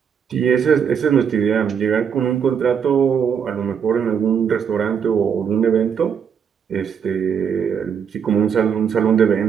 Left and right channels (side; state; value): left; quieter; 7.4 dB